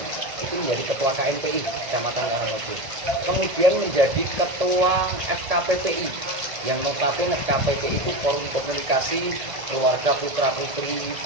menjadi Ketua KNPI Kecamatan Karangmojo. Kemudian menjadi Ketua FKPPI, yang notabene FKPPI itu Forum Komunikasi Keluarga Putra Putri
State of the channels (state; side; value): late; left; 1.8 ms